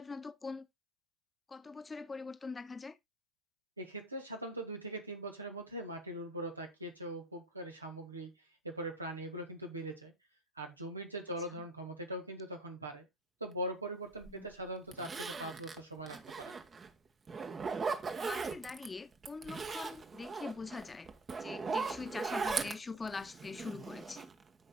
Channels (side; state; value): both; normal; correlation 0.39